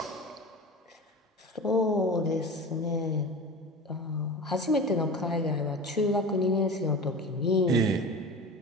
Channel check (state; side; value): normal; both; correlation 0.32